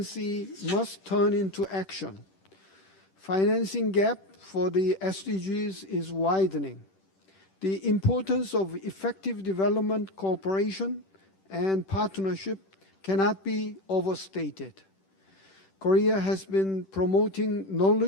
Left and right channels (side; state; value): right; late; 10 ms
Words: must turn into action. Financing gap for the SDGs is widening. The importance of effective development cooperation and partnership cannot be overstated. Korea has been promoting